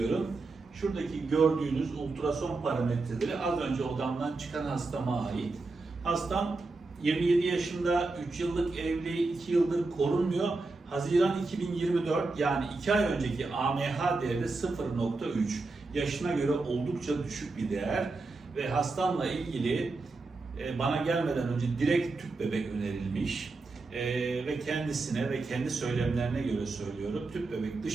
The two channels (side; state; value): left; quieter; 3.6 dB